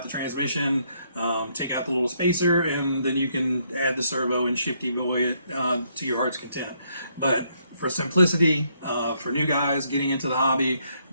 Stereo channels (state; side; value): inverted; both; correlation -0.73